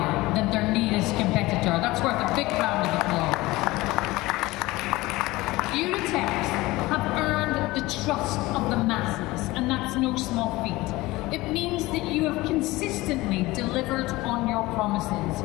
than their nearest competitor. That's worth a big round of applause. Uratex have earned the trust of the masses, and that's no small feat. It means that you have consistently delivered on your promises.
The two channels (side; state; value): right; quieter; 19.8 dB